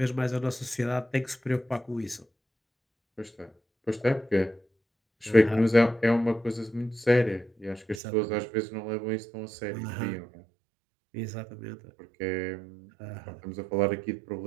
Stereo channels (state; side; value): drops out; left; at 8.0 s